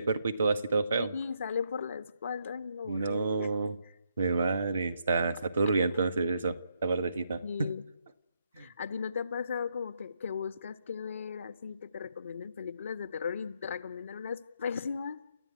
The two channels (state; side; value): inverted; both; correlation -0.76